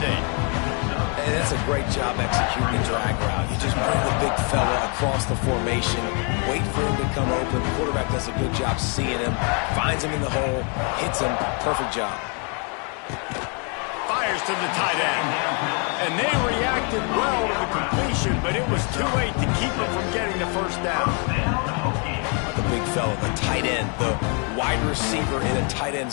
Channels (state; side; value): quieter; right; 37.3 dB